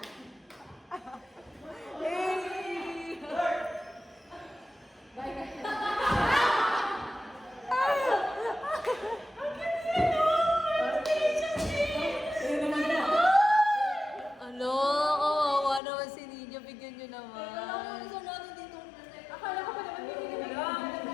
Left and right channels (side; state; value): right; drops out; at 15.8 s